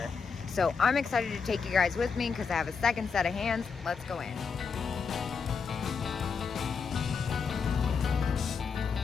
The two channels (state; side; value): quieter; right; 5.6 dB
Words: So I'm excited to take you guys with me because I have a second set of hands. Let's go in.